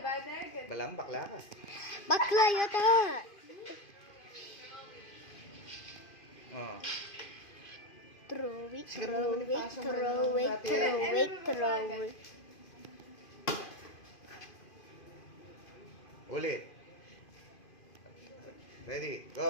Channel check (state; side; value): late; right; 2.5 ms